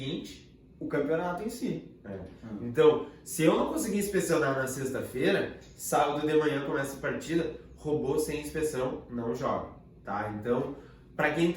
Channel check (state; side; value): identical; both; correlation 1.00